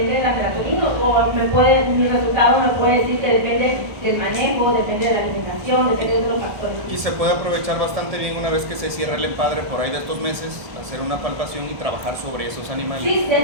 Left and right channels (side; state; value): left; late; 1.7 ms